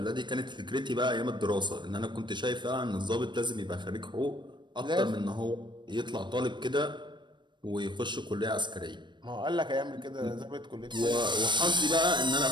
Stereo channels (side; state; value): left; late; 0.22 ms